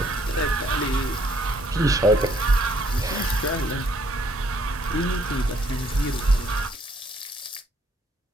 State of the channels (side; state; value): both; normal; correlation 0.66